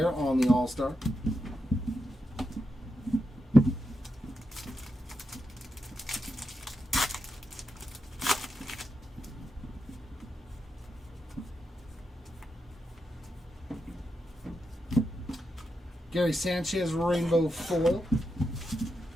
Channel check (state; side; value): normal; both; correlation 0.86